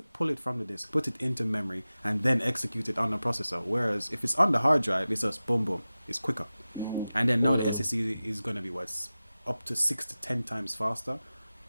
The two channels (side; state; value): both; inverted; correlation -0.96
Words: pull it from the disk, put it into memory, and then execute it on the processor. Whereas if it's on the hard drive, it's just boom boom. It's quicker. And then now the SSD is going to be what's up to 6 to 10 times faster.